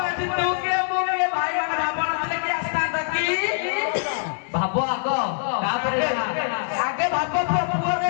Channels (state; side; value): silent; right; 57 dB below the other